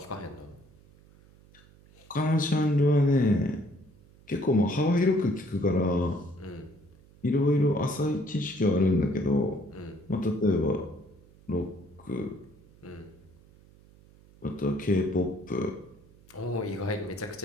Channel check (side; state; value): right; noise; hum, 26 dB below the sound